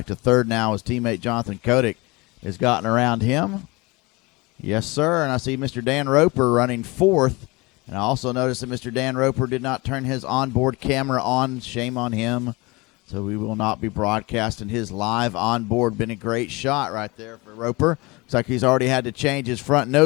to third now. His teammate Jonathan Kotick has gotten around him. Yes, sir, and I see Mr. Dan Roper running fourth. And I also noticed that Mr. Dan Roper did not turn his onboard camera on. Shame on him. So we will not be broadcasting his live onboard. Been a great shot right there for Roper. Looks like he's already had to change his front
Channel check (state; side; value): quieter; right; 24.5 dB